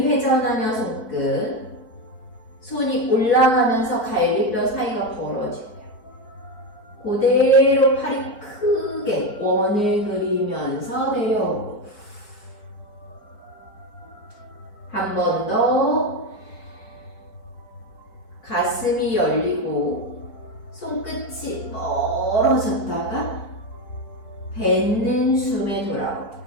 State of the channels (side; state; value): right; late; 4.7 ms